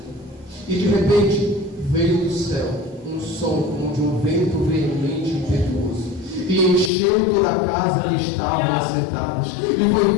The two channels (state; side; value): drops out; right; at 6.9 s